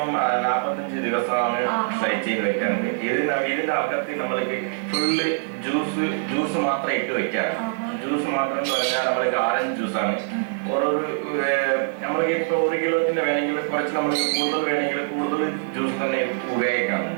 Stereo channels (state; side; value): silent; left; digital silence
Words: 45 ദിവസമാണ് ഫ്രൈ ചെയ്ത് വെക്കാറുണ്ട്. ഇതിന്റെ അകത്ത് നമ്മൾക്ക് ഫുള്ള് ജ്യൂസ് മാത്രം ഇട്ട് വെക്കാറ്. ജ്യൂസ് മാത്രം എന്ന് പറഞ്ഞാൽ നമ്മൾക്ക് ഓറഞ്ച് ജ്യൂസാണ്. ഓരോരു നമ്മൾക്ക് ഇപ്പൊ 1 കിലോത്തിന്റെ വേണമെങ്കിൽ കുറച്ച് നമ്മൾക്ക് കൂടുതൽ വേണമെങ്കിൽ കൂടുതൽ ജ്യൂസ് തന്നെ ഉപയോഗിക്കാം.